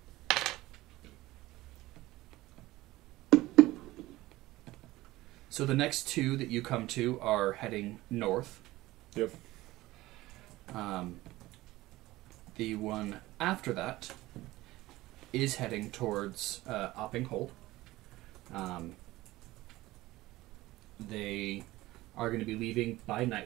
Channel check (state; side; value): quieter; left; 17.9 dB